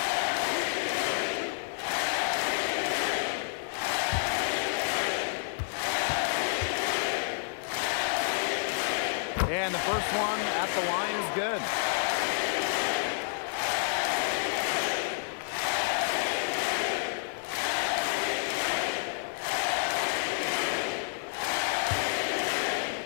And the first one at the line is good.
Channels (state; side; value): silent; right; 58 dB below the other